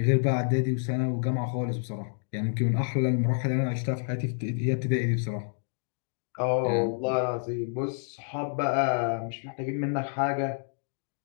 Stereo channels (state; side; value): silent; right; digital silence